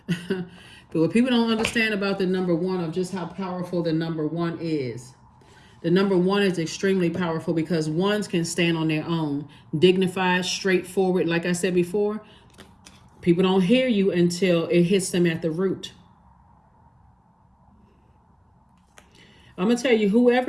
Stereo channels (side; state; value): both; identical; correlation 1.00